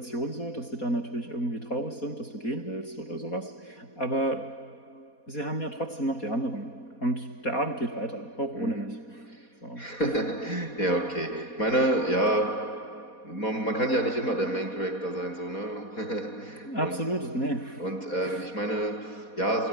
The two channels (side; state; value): right; late; 4.2 ms